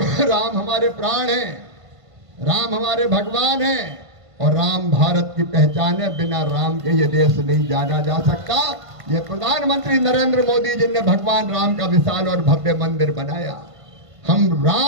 राम हमारे प्राण हैं, राम हमारे भगवान हैं, और राम भारत की पहचान है। बिना राम के ये देश नहीं जाना जा सकता। ये प्रधानमंत्री नरेंद्र मोदी जी ने भगवान राम का विशाल और भव्य मंदिर बनाया। हम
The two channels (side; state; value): left; late; 1.5 ms